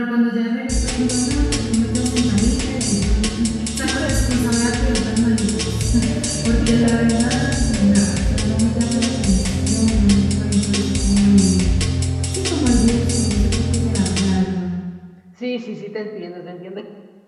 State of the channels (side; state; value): both; identical; correlation 1.00